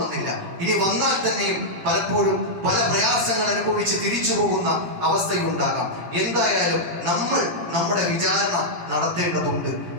ഇനി വന്നാൽ തന്നെയും പലപ്പോഴും പല പ്രയാസങ്ങൾ അനുഭവിച്ച് തിരിച്ചു പോകുന്ന അവസ്ഥയുണ്ടാകാം. എന്തായാലും നമ്മൾ നമ്മുടെ വിചാരണ നടത്തേണ്ടതുണ്ട്.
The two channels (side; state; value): left; late; 17 ms